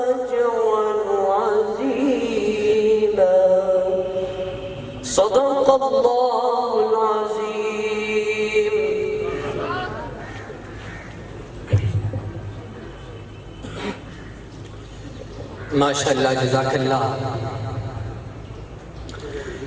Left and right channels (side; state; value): both; identical; correlation 1.00